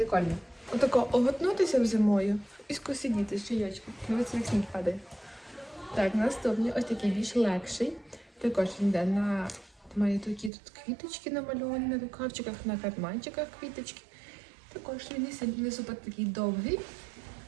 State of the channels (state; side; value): drops out; left; at 10.5 s